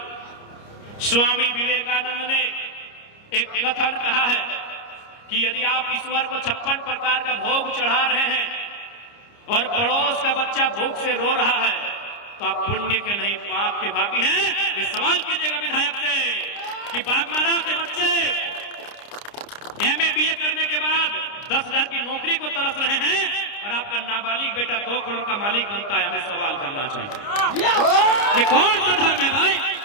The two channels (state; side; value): late; right; 29 ms